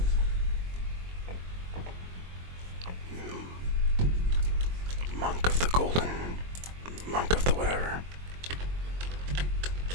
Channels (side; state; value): left; late; 22 ms